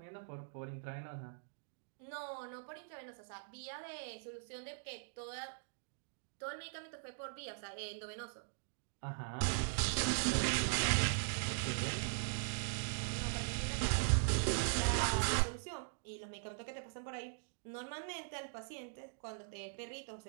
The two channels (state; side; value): silent; left; digital silence